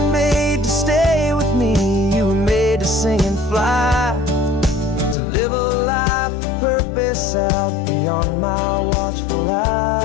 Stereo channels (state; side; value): drops out; right; at 5.2 s